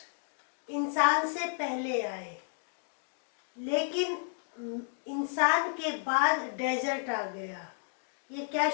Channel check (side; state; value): right; silent; digital silence